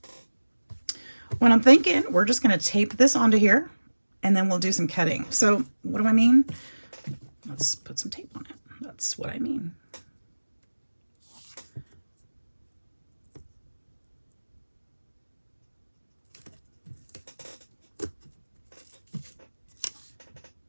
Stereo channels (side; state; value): both; inverted; correlation -1.00